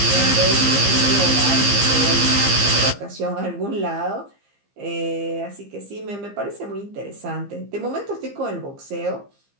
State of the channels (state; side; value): late; left; 15 ms